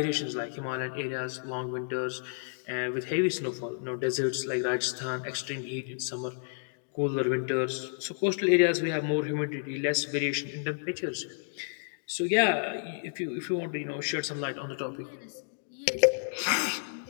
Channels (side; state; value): right; silent; digital silence